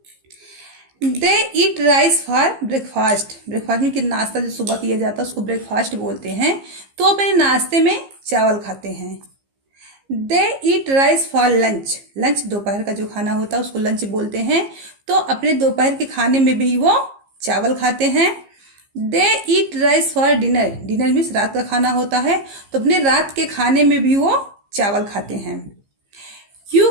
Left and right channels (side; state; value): left; late; 15 ms